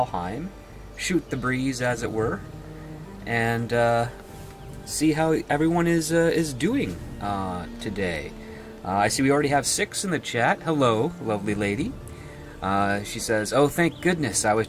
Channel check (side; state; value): both; identical; correlation 1.00